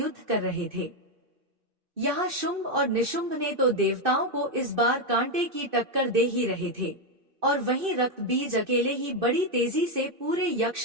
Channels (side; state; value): left; late; 2.6 ms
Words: कर रहे थे। यहाँ शुंभ और निशुंभ ने तो देवताओं को इस बार कांटे की टक्कर दे ही रहे थे और वहीं रक्त बीज अकेले ही बड़ी तेजी से पूरे यक्ष